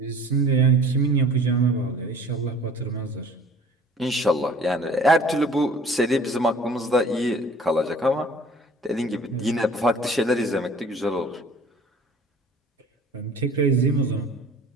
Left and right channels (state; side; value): normal; both; correlation 0.49